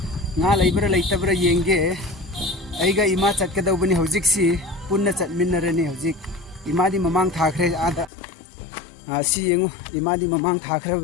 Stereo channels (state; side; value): drops out; right; at 8.1 s